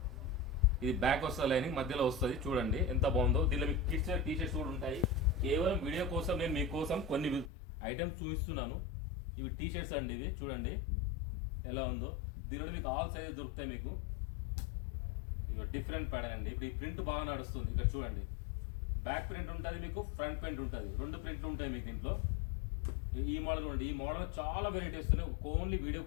ఇది బ్యాక్ వస్తుంది, లైనింగ్ మధ్యలో వస్తుంది. చూడండి ఎంత బాగుందో. దీనిలో మీకు కిడ్స్ టీ షర్ట్స్ కూడా ఉంటాయి. కేవలం వీడియో కోసం నేను మీకోసం కొన్ని ఐటమ్స్ చూపిస్తున్నాను. ఇవి టీ షర్ట్స్ అండి. ఇవి చూడండి ఎలా ఉందో. దీనిలో మీకు ఆల్ సైజెస్ దొరుకుతాయి మీకు. ఇవి డిఫరెంట్ ప్యాటర్న్ అండి. ఇప్పుడు ఈ ప్రింట్ బాగా నడుస్తుంది. ఇక్కడ చూడండి, బ్యాక్ ప్రింట్ ఉంటుంది మీకు, ఫ్రంట్ ప్రింట్ ఉంటుంది. 2 ప్రింట్లు ఉంటాయి మీకు దీంట్లో. ఈ మోడల్ ఉండి, ఈ మోడల్ చాలా వెరైటీస్ ఉన్నాయి. ఓన్లీ వీడియో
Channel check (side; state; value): right; drops out; at 7.5 s